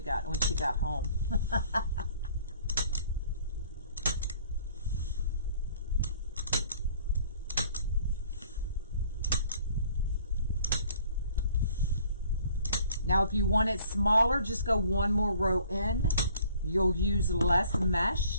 she got home. Now, if you want it smaller, just go one more row in. You'll use less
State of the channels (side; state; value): both; inverted; correlation -0.56